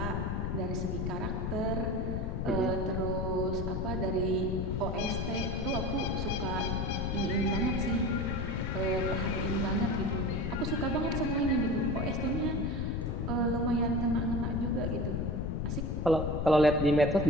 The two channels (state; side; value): noise; left; rumble, 1 dB below the sound